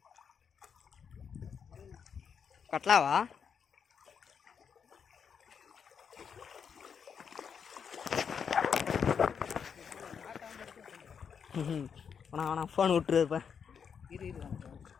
கட்லாவா? வேணா ஃபோன் விட்டுருப்பேன்.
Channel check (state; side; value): quieter; right; 6.9 dB